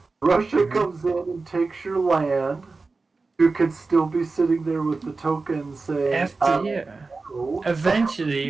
Russia comes in and takes your land, you could still be sitting there with the token saying, After, yeah. "Oh."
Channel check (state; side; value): quieter; left; 3.9 dB